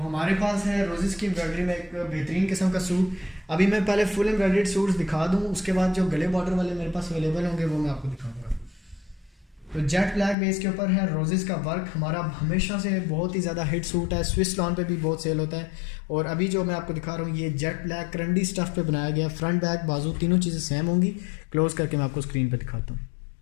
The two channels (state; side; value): drops out; right; at 10.4 s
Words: पास है रोजेस की एम्ब्रॉयडरी में एक बेहतरीन किस्म का सूट। अभी मैं पहले फुल एम्ब्रॉयडर्ड सूट्स दिखा दूं, उसके बाद जो गले बॉर्डर वाले मेरे पास अवेलेबल होंगे वो मैं आपको दिखाऊंगा। तो जेट ब्लैक बेस के ऊपर है रोजेस का वर्क, हमारा हमेशा से बहुत ही ज़्यादा हिट सूट है, स्विस लॉन पे भी बहुत सेल होता है। और अभी जो मैं आपको दिखा रहा हूँ ये जेट ब्लैक करंडी स्टफ पे बनाया गया, फ्रंट बैक बाजू तीनों चीज़ें सेम होंगी। क्लोज करके मैं आपको स्क्रीन पे दिखाता हूँ।